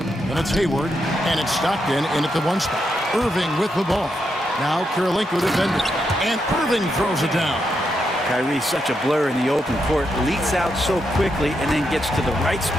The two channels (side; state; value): both; normal; correlation 0.82